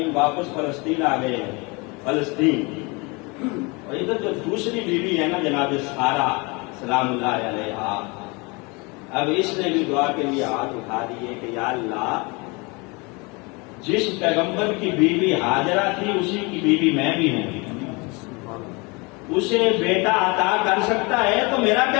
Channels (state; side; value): quieter; right; 27.9 dB